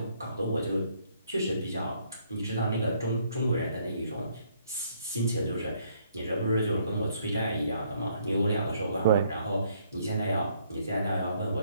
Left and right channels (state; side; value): inverted; both; correlation -0.67